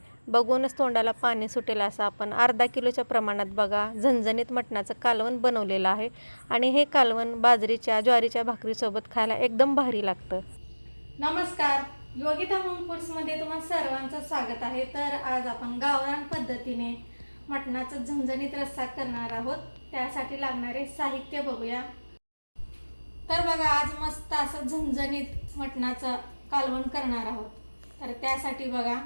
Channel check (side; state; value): both; inverted; correlation -1.00